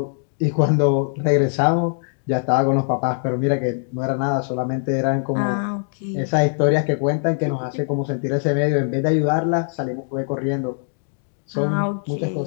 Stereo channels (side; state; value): right; silent; digital silence